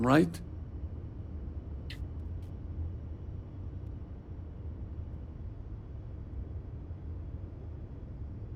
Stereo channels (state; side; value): identical; both; correlation 1.00